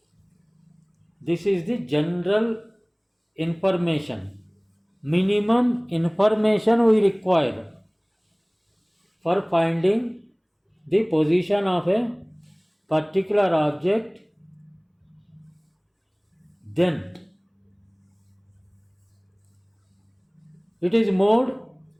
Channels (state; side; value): identical; both; correlation 1.00